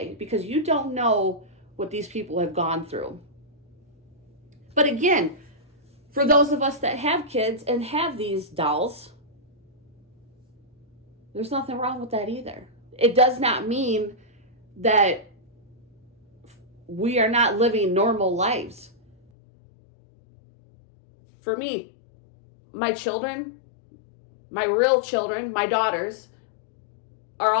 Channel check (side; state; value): right; drops out; at 19.2 s